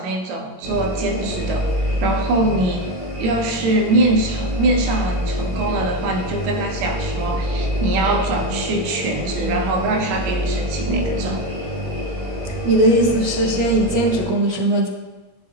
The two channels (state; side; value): late; left; 22 ms